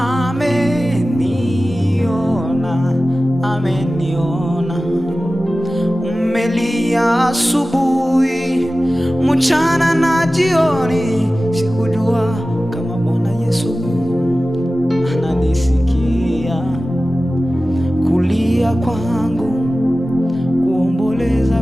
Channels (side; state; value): both; normal; correlation 0.96